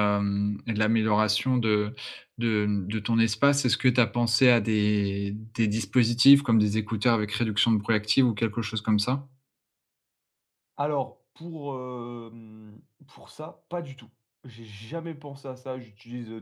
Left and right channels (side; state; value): both; identical; correlation 1.00